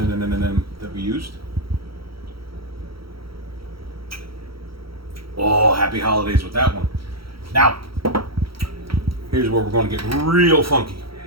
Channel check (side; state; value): left; late; 0.75 ms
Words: that we used. Oh, happy holidays with that one. Now, here's where we're going to get real funky.